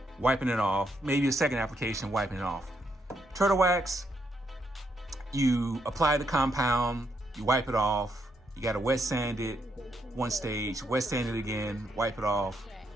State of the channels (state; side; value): normal; both; correlation 0.77